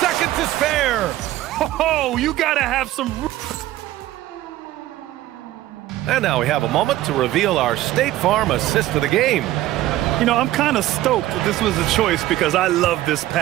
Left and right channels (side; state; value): left; quieter; 15.2 dB